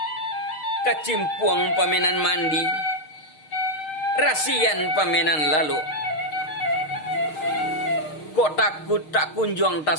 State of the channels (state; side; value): late; right; 6.5 ms